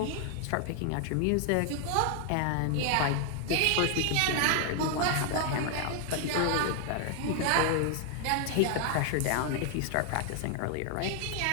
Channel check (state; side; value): different; both; correlation 0.00